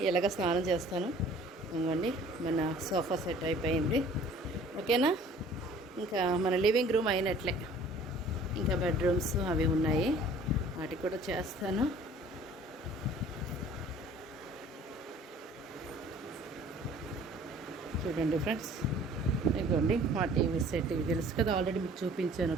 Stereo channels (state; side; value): normal; both; correlation 0.51